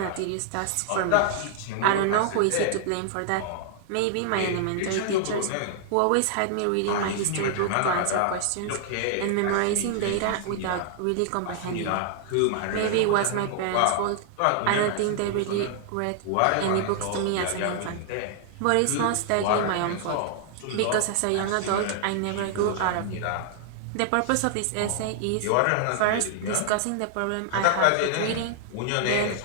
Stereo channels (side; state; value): both; different; correlation -0.01